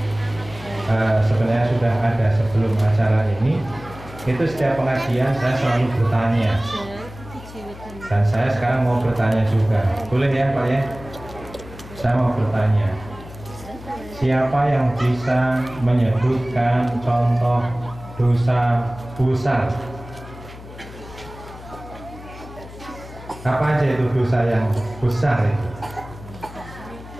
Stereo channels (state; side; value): noise; left; hum, 16 dB below the sound